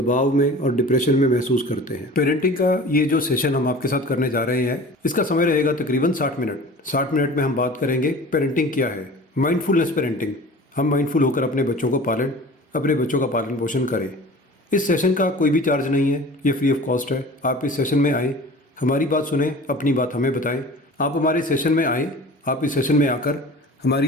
में और डिप्रेशन में महसूस करते हैं। पेरेंटिंग का ये जो सेशन हम आपके साथ करने जा रहे हैं, इसका समय रहेगा तकरीबन 60 मिनट। 60 मिनट में हम बात करेंगे पेरेंटिंग क्या है, माइंडफुलनेस पेरेंटिंग। हम माइंडफुल होकर अपने बच्चों को पालें, अपने बच्चों का पालन पोषण करें। इस सेशन का कोई भी चार्ज नहीं है, ये फ्री ऑफ कॉस्ट है। आप इस सेशन में आएँ, हमारी बात सुने, अपनी बात हमें बताएं। आप हमारे सेशन में आएँ, आप इस सेशन में आकर हमारी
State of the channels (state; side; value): normal; both; correlation 0.40